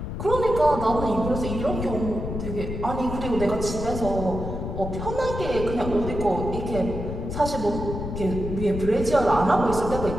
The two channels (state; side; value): noise; left; rumble, 5 dB below the sound